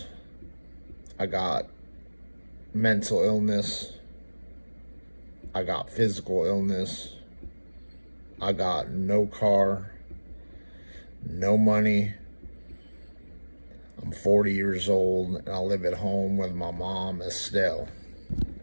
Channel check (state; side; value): inverted; both; correlation -1.00